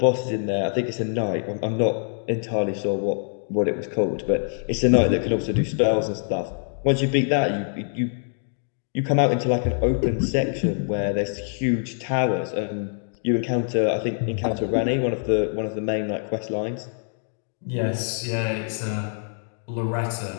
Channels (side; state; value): right; silent; digital silence